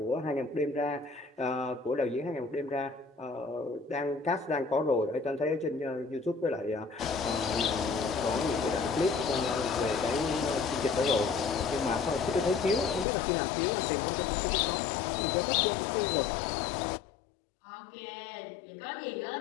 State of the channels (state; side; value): drops out; right; at 13.1 s